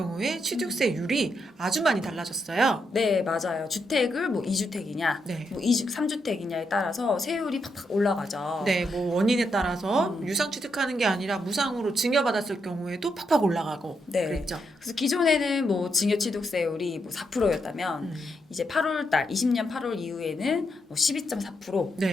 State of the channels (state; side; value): normal; both; correlation 0.80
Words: 취득세율이 아주 많이 달라졌어요. 네, 맞아요. 주택을 뭐 2주택이냐, 네. 뭐 3주택이냐에 따라서 세율이 팍팍 올라가죠. 네, 뭐 원인에 따라서 음. 유상 취득하는 게 아니라 무상으로 증여받았을 경우에도 팍팍 올라가고 네. 그랬죠. 그래서 기존에는 뭐 증여취득세율이 뭐 4%였다면 이제 8월달 20년 8월 이후에는 뭐 12.4%,